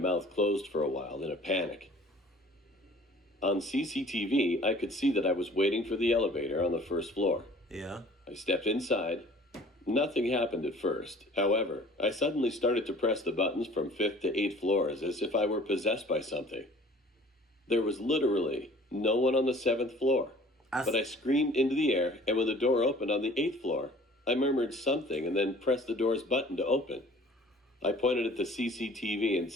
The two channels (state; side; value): normal; both; correlation 0.50